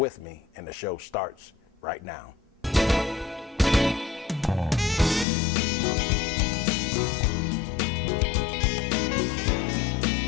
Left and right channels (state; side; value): drops out; right; at 5.2 s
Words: me, and the show starts right now.